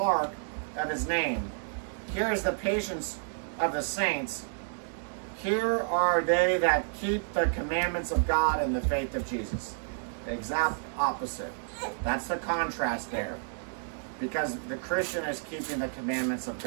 of his name. Here is the patience of the saints. Here are they that keep the commandments of God and the faith of Jesus. The exact opposite. That's the contrast there. Because the Christian is keeping the commandments of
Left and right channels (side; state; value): left; silent; digital silence